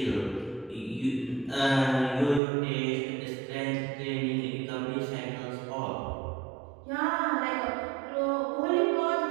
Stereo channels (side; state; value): left; drops out; at 2.4 s